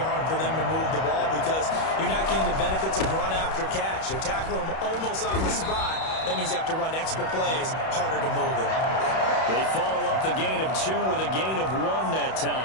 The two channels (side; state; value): right; late; 31 ms